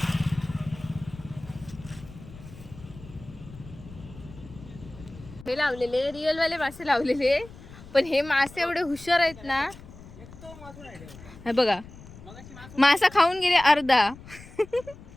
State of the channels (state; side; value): noise; left; rumble, 18 dB below the sound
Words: हे लावलेले रिअल वाले मासे लावलेले, पण हे मासे एवढे हुशार आहेत ना. हे बघा मासा खाऊन गेले अर्धा.